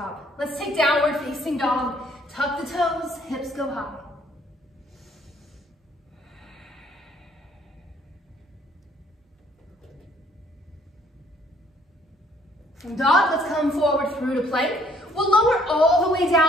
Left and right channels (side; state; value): both; normal; correlation 0.63